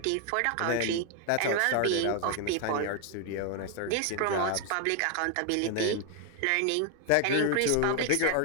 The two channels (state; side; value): different; both; correlation 0.00